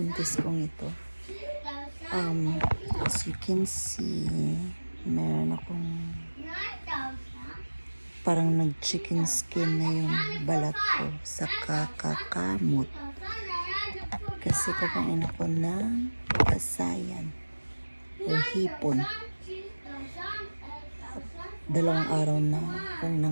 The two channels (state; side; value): inverted; both; correlation -1.00